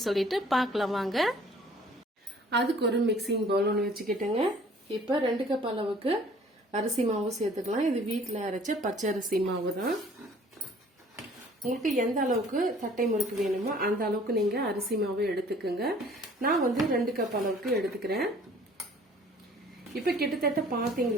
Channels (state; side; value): normal; both; correlation 0.54